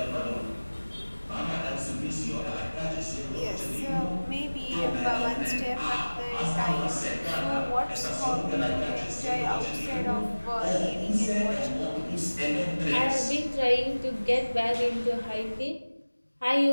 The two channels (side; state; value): both; inverted; correlation -1.00